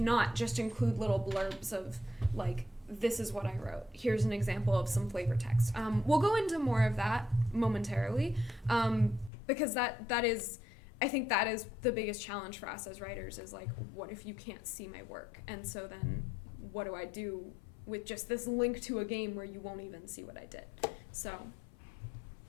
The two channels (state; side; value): drops out; right; at 9.3 s